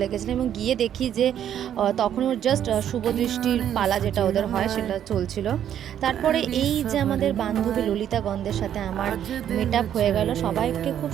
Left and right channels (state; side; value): quieter; left; 10.1 dB